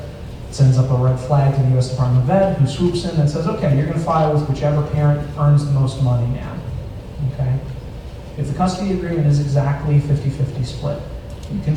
sends up a red flag to the U.S. Department of Ed, who swoops in and says, okay, you're going to file with whichever parent earns the most money now. Okay? If the custody agreement is exactly 50-50 split, you can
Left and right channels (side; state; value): both; identical; correlation 1.00